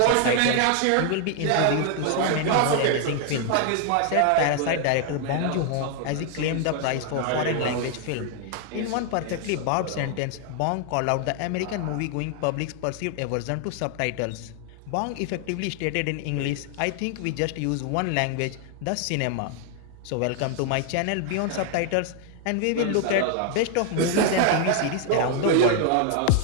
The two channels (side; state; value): both; different; correlation 0.00